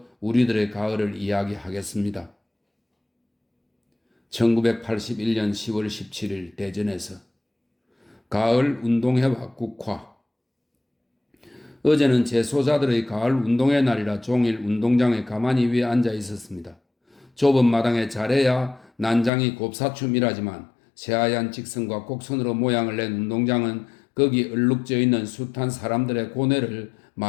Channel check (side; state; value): right; drops out; at 19.3 s